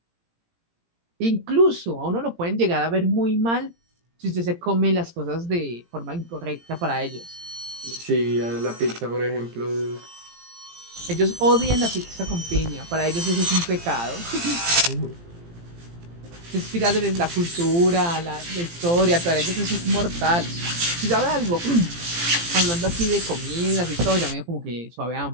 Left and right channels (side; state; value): left; late; 17 ms